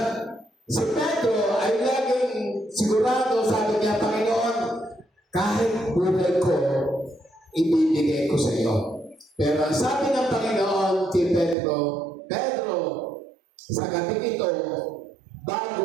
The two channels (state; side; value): drops out; left; at 11.6 s